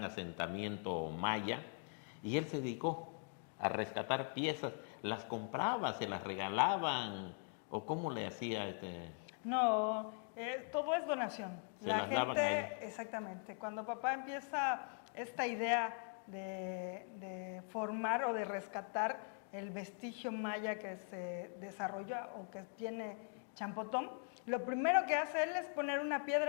asentamiento maya, y él se dedicó a rescatar piezas, las compraba, se las regalaban, o cómo le hacía No, todo es donación. Se La las daban a él. gente, exactamente, cuando papá empieza esta idea de formar o de rescatar el vestigio maya que se desarrolla o que tiene Champotón, lo primero que hace él es poner una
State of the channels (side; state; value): right; silent; 50 dB below the other